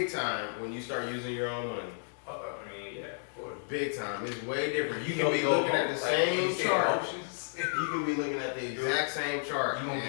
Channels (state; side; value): silent; right; digital silence